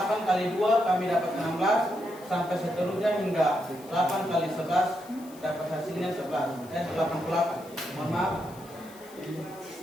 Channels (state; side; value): noise; left; hiss, 22 dB below the sound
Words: kali 2 kami dapat 16 sampai seterusnya hingga 8 kali 11 dapat hasilnya 88. Mohon maaf.